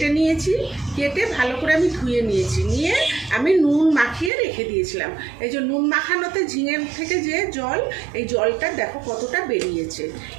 নিয়েছি। কেটে ভালো করে আমি ধুয়ে নিয়েছি, নিয়ে আমি নুন মাখিয়ে রেখে দিয়েছিলাম। এই যে নুন মাখানোতে ঝিঙের থেকে যে জল, এই জলটা দেখো কতটা বেরিয়েছে।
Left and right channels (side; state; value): left; drops out; at 4.3 s